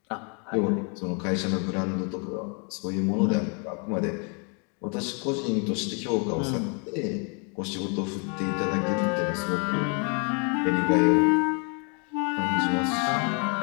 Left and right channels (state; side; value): quieter; right; 37.0 dB